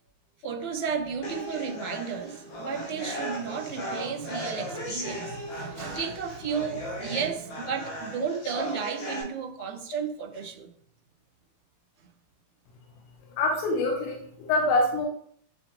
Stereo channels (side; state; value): right; late; 18 ms